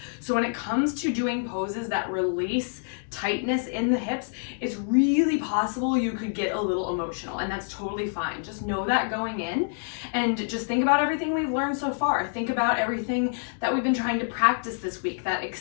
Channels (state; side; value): silent; right; digital silence